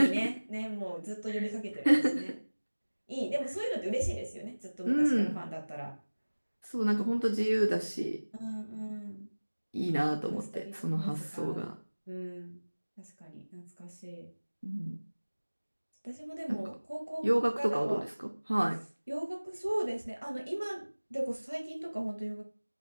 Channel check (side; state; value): both; inverted; correlation -1.00